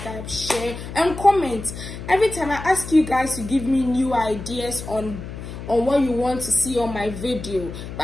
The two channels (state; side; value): noise; left; hum, 10 dB below the sound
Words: share, and comment. Every time I ask you guys to give me new ideas on what you want to see on my video,